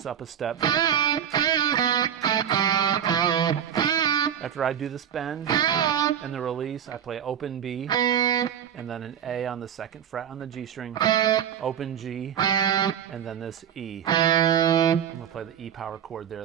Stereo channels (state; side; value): quieter; left; 9.1 dB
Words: up a step. After I do this bend and the release, I play open B, and then an A on the 2nd fret on the G string, open G, and then this E. I'm going to play the E power chord there